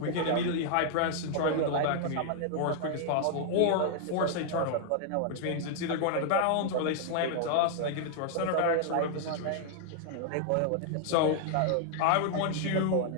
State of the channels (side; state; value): both; different; correlation 0.00